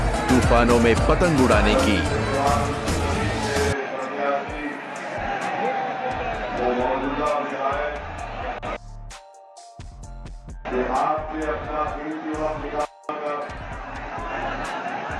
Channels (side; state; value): both; identical; correlation 1.00